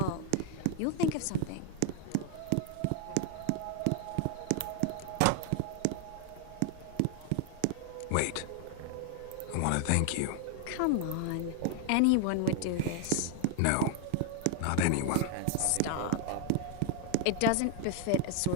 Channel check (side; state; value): both; different; correlation 0.00